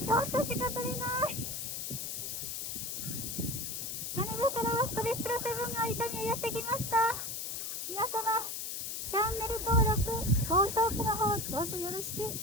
ちょっとしか取れない。羽田からストレップラ7が伊丹へやってきました。皆様、チャンネル登録、高評価の方、どうぞよろしく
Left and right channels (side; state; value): left; noise; hiss, 4 dB below the sound